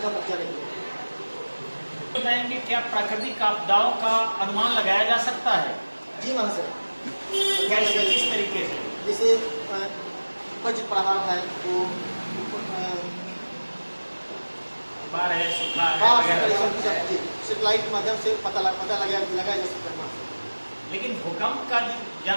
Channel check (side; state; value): both; inverted; correlation -1.00